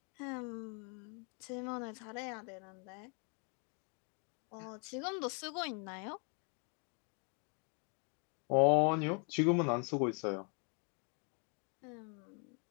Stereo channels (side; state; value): right; quieter; 37.2 dB